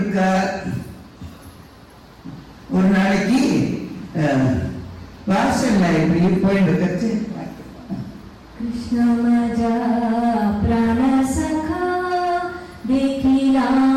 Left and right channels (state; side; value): identical; both; correlation 1.00